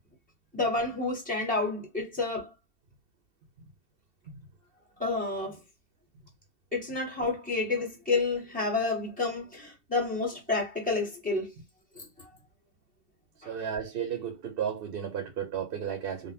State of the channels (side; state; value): left; late; 2.7 ms